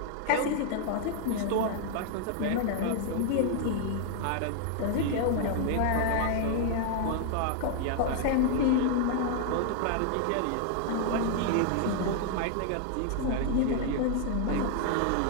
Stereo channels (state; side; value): different; both; correlation 0.00